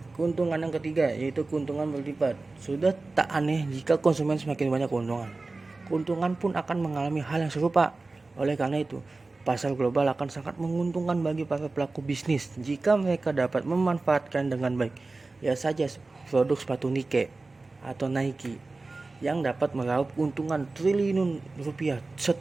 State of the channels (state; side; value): quieter; left; 3.5 dB